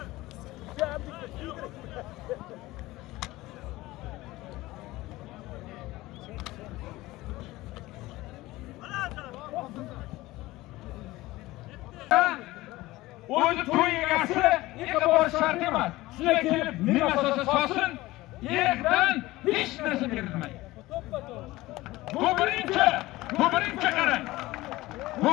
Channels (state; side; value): quieter; right; 18.6 dB